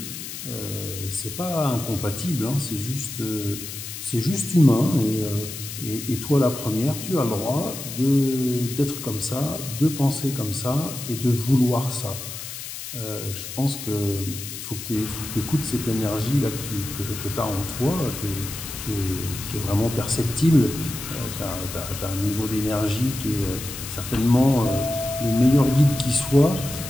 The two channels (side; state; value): left; noise; hiss, 9 dB below the sound